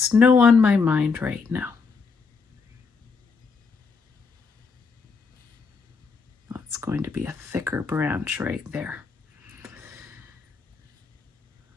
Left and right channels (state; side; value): quieter; right; 4.9 dB